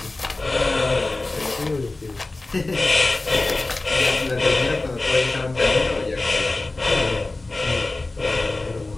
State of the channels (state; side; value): quieter; right; 3.1 dB